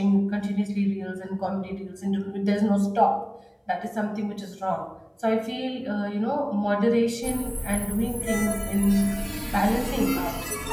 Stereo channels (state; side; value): identical; both; correlation 1.00